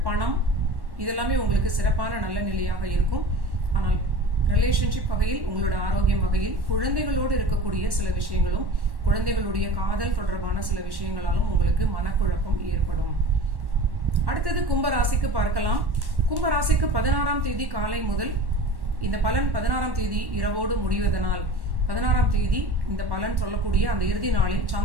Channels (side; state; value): left; late; 1.1 ms